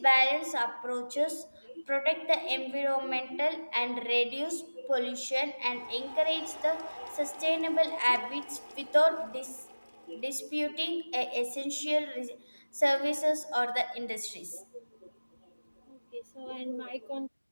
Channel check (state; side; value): inverted; both; correlation -1.00